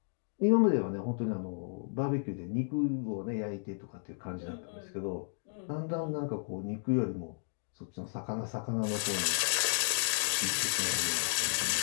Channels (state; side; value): silent; right; digital silence